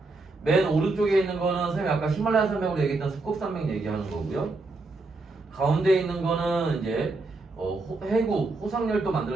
맨 오른쪽에 있는 거는 선생님이 아까 히말라야 산맥으로 얘기했던 습곡산맥 얘기하는 거고요. 가운데 있는 거는 이제 해구, 호상열도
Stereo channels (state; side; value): quieter; left; 3.4 dB